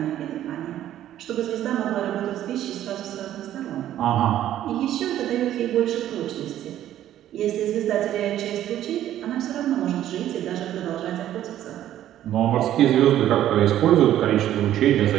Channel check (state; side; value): quieter; left; 12.2 dB